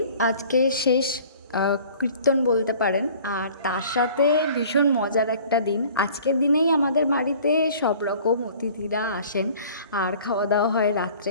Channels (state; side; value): inverted; both; correlation -0.49